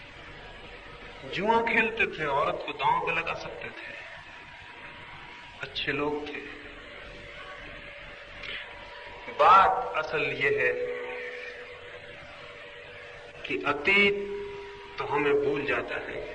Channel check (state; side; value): identical; both; correlation 1.00